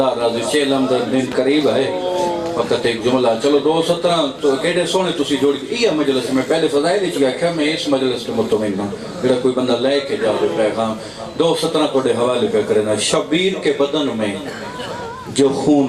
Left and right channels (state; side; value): identical; both; correlation 1.00